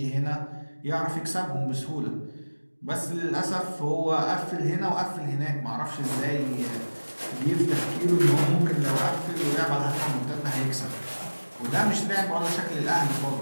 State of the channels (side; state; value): both; inverted; correlation -1.00